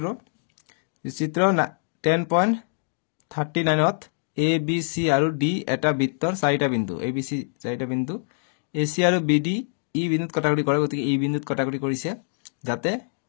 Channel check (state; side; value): silent; right; 62 dB below the other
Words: চিত্ৰ 10.39 ত ABC আৰু D এটা বৃত্তৰ চাৰিটা বিন্দু ABC চাৰিটা বিন্দু AC আৰু BD ই বিন্দুত কাটাকুটি কৰে গতিকে এই বিন্দুত কাটাকুটি কৰিছে যাতে